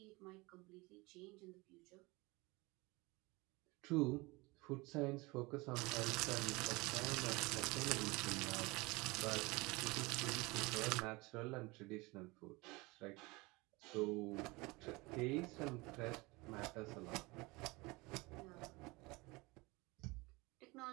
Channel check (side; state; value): left; quieter; 24.1 dB